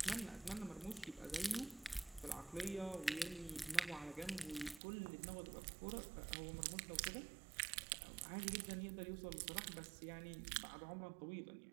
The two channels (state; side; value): drops out; left; at 4.8 s